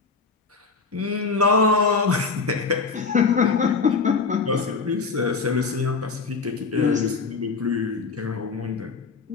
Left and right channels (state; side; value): quieter; right; 4.6 dB